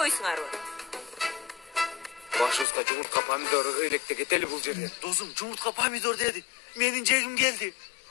Башыбызга жумуртка помидор ыйлекте кетели бул жерден. Досум, жумуртка помидор деди. Менин жегим келди.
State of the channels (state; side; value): drops out; right; at 2.7 s